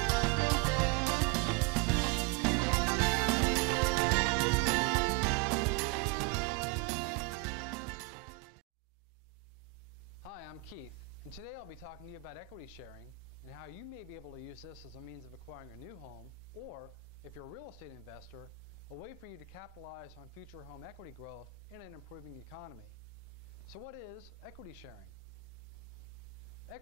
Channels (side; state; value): left; quieter; 17.3 dB